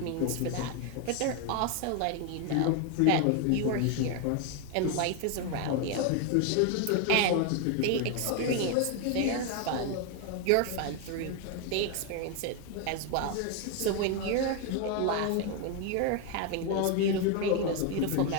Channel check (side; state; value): both; different; correlation 0.01